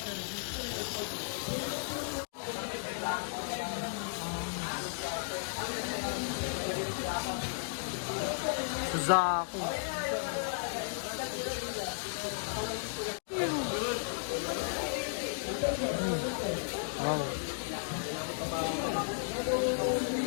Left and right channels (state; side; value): silent; right; digital silence